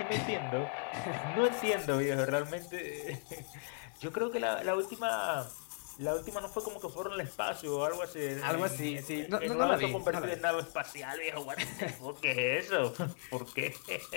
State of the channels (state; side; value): silent; right; 54 dB below the other